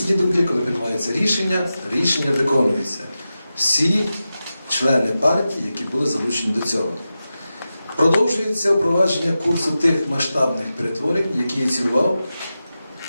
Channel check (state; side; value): inverted; both; correlation -0.92